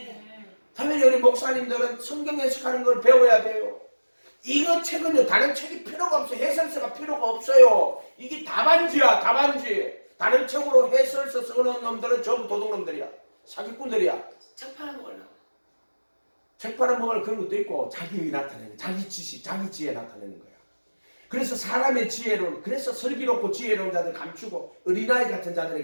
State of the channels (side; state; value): both; inverted; correlation -1.00